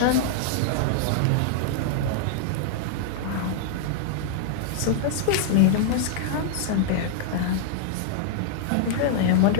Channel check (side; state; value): both; different; correlation -0.01